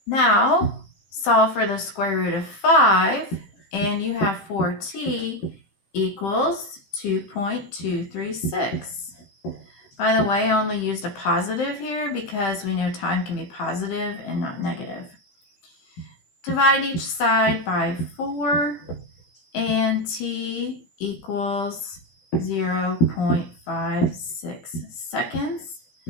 Now, solve for the square root of 5, and you have 4t equals 2.236. By the way, I only used a positive here because we know time can be positive and not negative. Divide each side by 4, and t equals 0.56 seconds.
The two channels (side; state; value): right; late; 16 ms